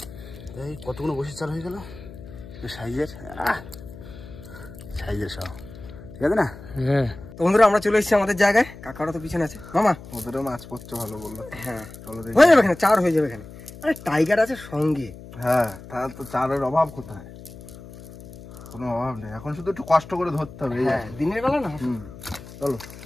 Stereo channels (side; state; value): left; noise; hum, 16 dB below the sound